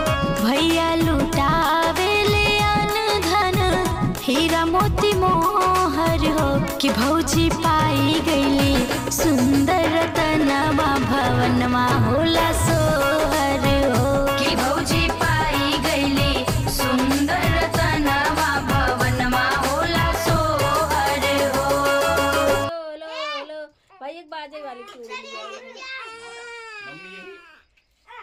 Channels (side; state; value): both; identical; correlation 1.00